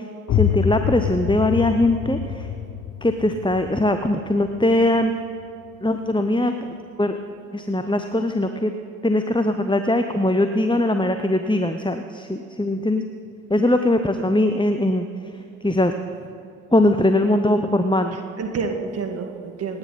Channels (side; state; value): both; normal; correlation 0.69